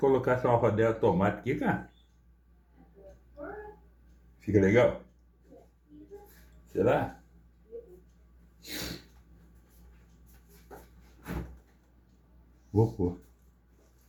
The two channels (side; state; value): both; identical; correlation 1.00